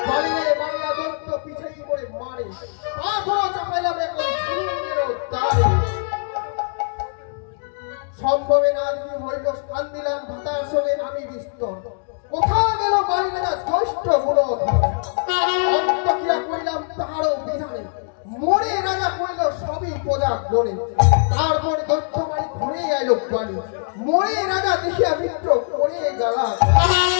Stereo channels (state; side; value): silent; right; 62 dB below the other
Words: বাড়িয়ে বাড়িয়া দৈত্য পিছাই করে মারে আখরো চাপাইলাম এখন সুরঙ্গেরও দ্বারে সম্ভবে না যদি হইল স্থান দিলাম ভাতার সঙ্গে আমি বিস্তর কোথা গেল বাড়ি রাজা জ্যৈষ্ঠ গুণ অন্তক্রিয়া করিলাম তাহারও বিধানে মরে রাজা কইল সবই প্রজা গণে তারপর দৈত্য বাড়ি ঘুরে আইল বাড়ি মরে রাজা দেখিয়া মিত্র করে গেলা